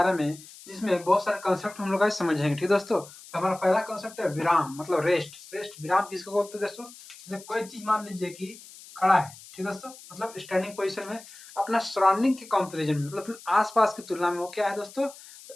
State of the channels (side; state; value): left; noise; hiss, 19 dB below the sound